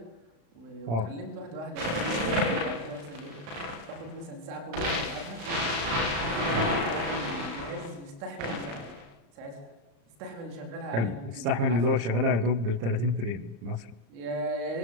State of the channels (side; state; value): left; late; 35 ms